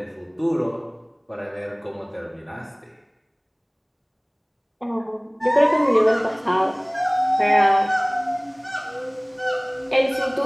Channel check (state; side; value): identical; both; correlation 1.00